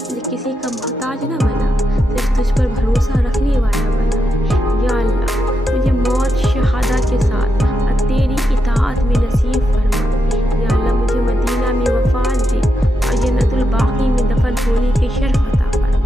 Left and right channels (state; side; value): normal; both; correlation 0.85